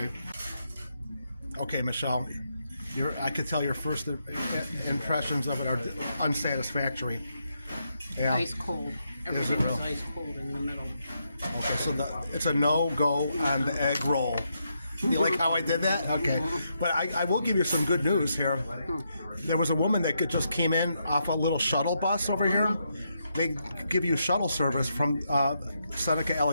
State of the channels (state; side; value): inverted; both; correlation -0.80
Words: Okay, Michelle. I could tell your first impressions of it are unsatisfactory. Yeah. Ice cold. Everything was ice cold in the middle. Okay, so it's a no-go on the egg roll. You like how I did that? Okay. But I will give you some good news here. There was a woman that just came in off a little shuttle bus over here. They give you shuttle service from Seneca